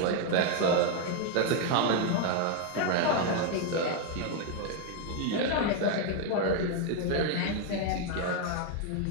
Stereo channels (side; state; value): both; different; correlation 0.01